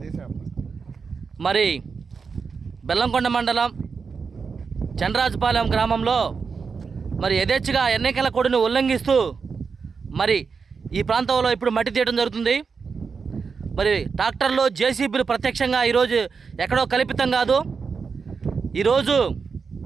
మరి బెల్లంకొండ మండలం చంద్రరాజపాలెం గ్రామంలో మరి యథేచ్ఛగా ఎన్నికల కోడ్ని ఉల్లంఘిస్తూ మరి ఈ ప్రాంతంలో ఇప్పుడు మట్టి తీయడం జరుగుతుంది. మరి ట్రాక్టర్లు జేసీబీలు ప్రత్యక్షంగా ఈరోజు ఎక్కడో కల్పితం కాదు. ఈరోజు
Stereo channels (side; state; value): left; quieter; 5.4 dB